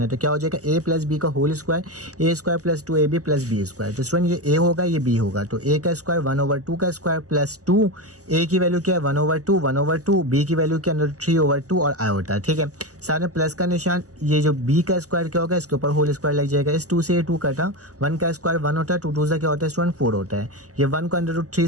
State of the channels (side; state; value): left; late; 0.66 ms